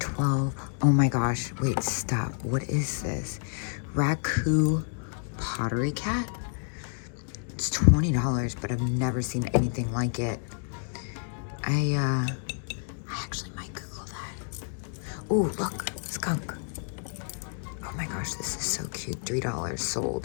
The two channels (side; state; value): right; silent; 58 dB below the other